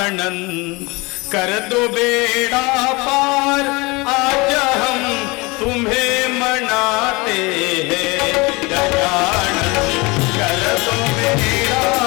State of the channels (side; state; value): right; quieter; 25.3 dB